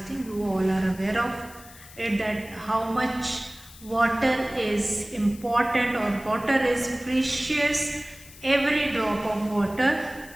You all are aware of it, that how much water is important or water is precious. Every drop of water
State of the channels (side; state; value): left; noise; hiss, 20 dB below the sound